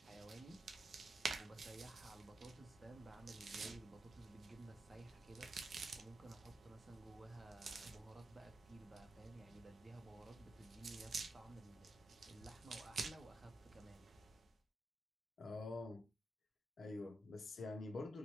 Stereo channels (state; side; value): normal; both; correlation 0.87